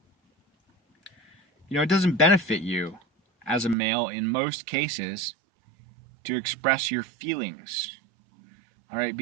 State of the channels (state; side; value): drops out; left; at 3.8 s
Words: You know, it doesn't benefit you as a male in most cases to express your feelings. All right,